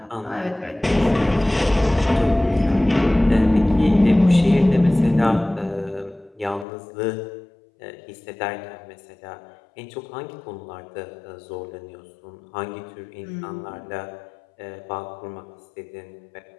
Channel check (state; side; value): drops out; right; at 6.7 s